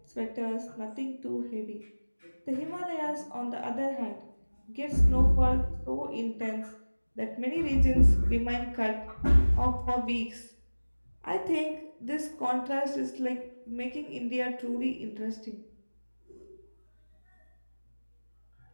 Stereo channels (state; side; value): inverted; both; correlation -1.00